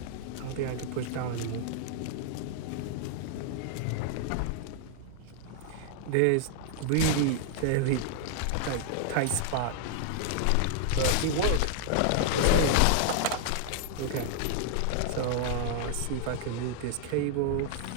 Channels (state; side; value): different; both; correlation -0.01